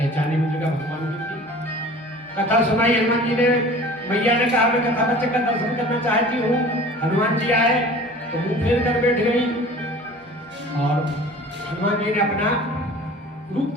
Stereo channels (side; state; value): both; normal; correlation 0.43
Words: मुद्रिका भगवान की थी। कथा सुनाई हनुमान जी ने। मैया ने कहा मैं कथा बच्चे का दर्शन करना चाहती हूँ। हनुमान जी आए तो मुंह फेर कर बैठ गई और हनुमान जी ने अपना रूप